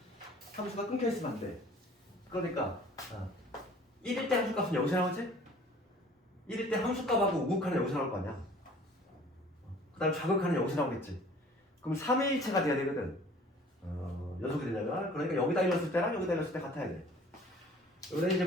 함수가 끊겨 있으면 안 돼. 그러니까 1일 때 함수값은 여기서 나오지? 1일 때 함수값하고 우극하는 여기서 나올 거 아니야. 그 다음 좌극하는 여기서 나오겠지. 그럼 3일체가 돼야 되거든. 연속이 되려면. 그러니까 여기다 일렀을 때랑 여기다 일렀을 때 같아야 돼. 여기다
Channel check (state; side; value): normal; both; correlation 0.50